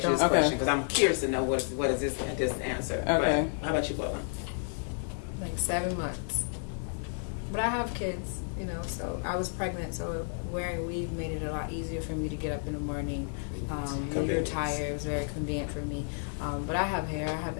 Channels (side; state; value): right; silent; 57 dB below the other